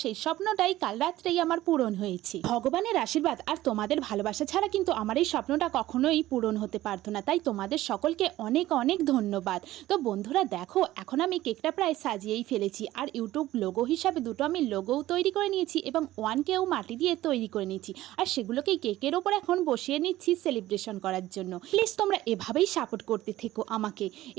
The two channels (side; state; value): left; quieter; 15.5 dB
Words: সেই স্বপ্নটাই কাল রাত্রেই আমার পূরণ হয়েছে। ভগবানের আশীর্বাদ আর তোমাদের ভালোবাসা ছাড়া কিন্তু আমার এই স্বপ্নটা কখনোই পূরণ হতে পারতো না। তাই তোমাদের সকলকে অনেক অনেক ধন্যবাদ। তো বন্ধুরা দেখো, এখন আমি কেকটা প্রায় সাজিয়েই ফেলেছি। আর ইউটিউব লোগো হিসাবে দুটো আমি লোগোও তৈরি করে নিয়েছি এবং 1Kও মাটি দিয়ে তৈরি করে নিয়েছি। আর সেগুলোকেই কেকের ওপর এখন বসিয়ে নিচ্ছি সেলিব্রেশন করার জন্য। প্লিজ তোমরা এভাবেই সাপোর্ট করতে থেকো আমাকে।